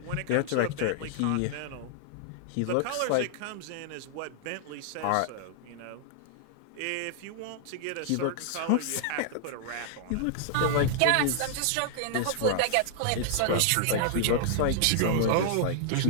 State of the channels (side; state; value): both; different; correlation 0.00